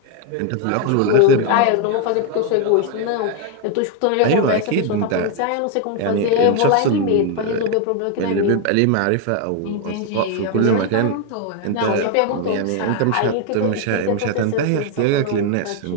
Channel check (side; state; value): both; different; correlation 0.01